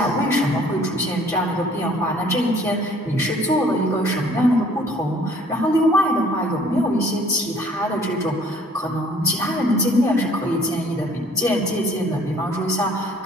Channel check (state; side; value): normal; both; correlation 0.56